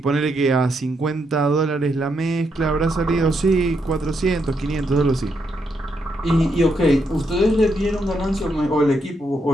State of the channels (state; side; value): normal; both; correlation 0.79